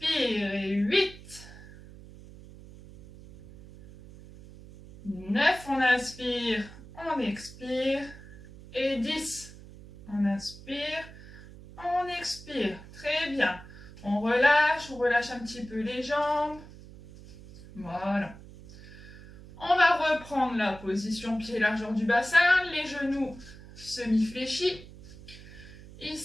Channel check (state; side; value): noise; right; hum, 18 dB below the sound